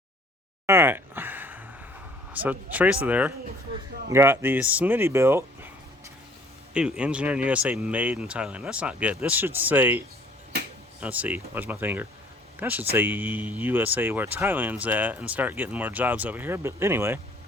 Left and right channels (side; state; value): both; normal; correlation 0.56